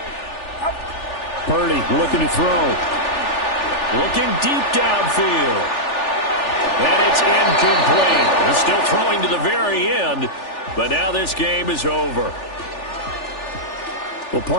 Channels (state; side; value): late; right; 3.4 ms